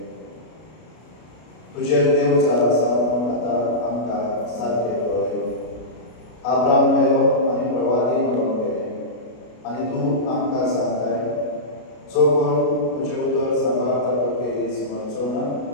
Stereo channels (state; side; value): late; right; 33 ms